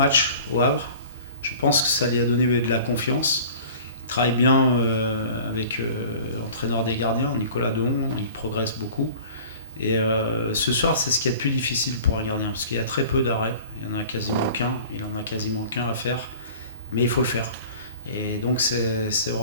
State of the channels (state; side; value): inverted; both; correlation -0.43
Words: au Havre. Je pense que ça lui a donné de la confiance. Il travaille bien avec l'entraîneur des gardiens, Nicolas Dehon, il progresse beaucoup. Et ce soir, c'est ce qui est le plus difficile pour un gardien, parce qu'il y a très peu d'arrêts. Il en a quasiment qu'un à faire, mais il faut le faire. Et donc c'est